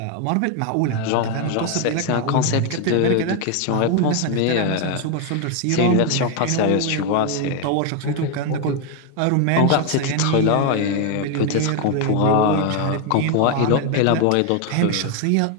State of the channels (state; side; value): different; both; correlation 0.01